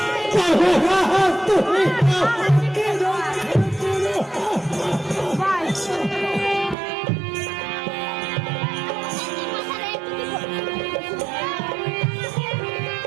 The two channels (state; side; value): drops out; left; at 6.8 s